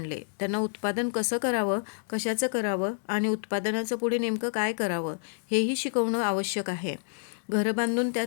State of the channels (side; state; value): right; silent; digital silence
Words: त्यांना उत्पादन कसं करावं, कशाचं करावं आणि उत्पादनाचं पुढे नेमकं काय करावं हेही शिकवणं आवश्यक आहे. घरं बांधून